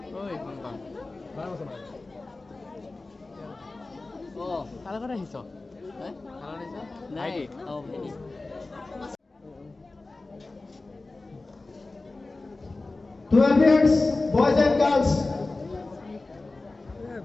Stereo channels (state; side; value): quieter; right; 3.3 dB